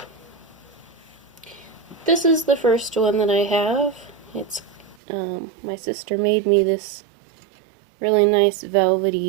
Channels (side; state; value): left; drops out; at 5.0 s